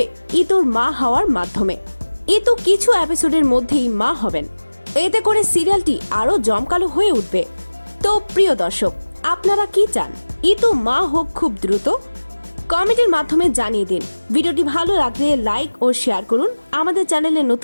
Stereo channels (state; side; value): inverted; both; correlation -1.00